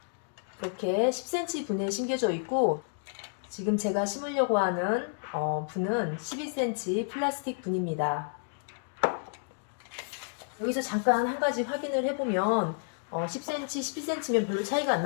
이렇게 10cm 분에 심겨져 있고, 지금 제가 심으려고 하는 분은 12cm 플라스틱 분입니다. 여기서 잠깐 한 가지 확인을 해보면 10cm, 12cm면 별로 차이가 안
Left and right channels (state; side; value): silent; right; digital silence